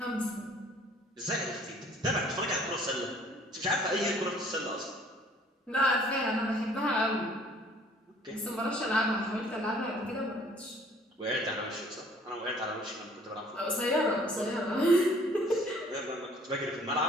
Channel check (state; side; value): normal; both; correlation 0.56